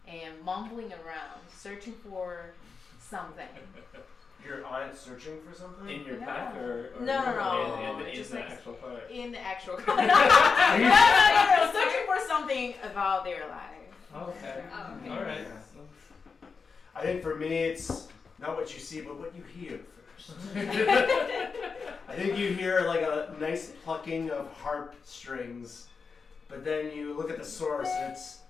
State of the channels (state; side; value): quieter; right; 5.1 dB